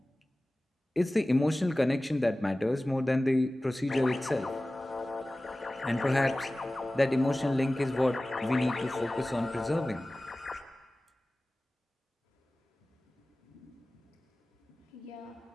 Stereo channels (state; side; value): normal; both; correlation 0.97